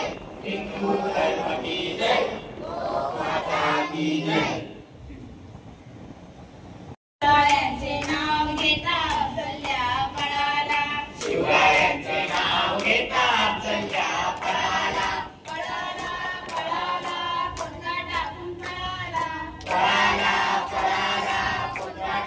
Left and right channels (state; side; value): identical; both; correlation 1.00